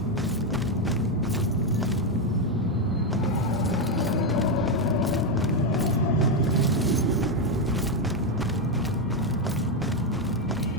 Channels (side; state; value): both; normal; correlation 0.05